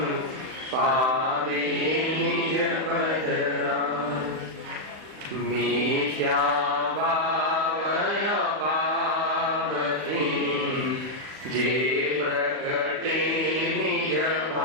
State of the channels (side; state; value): left; late; 39 ms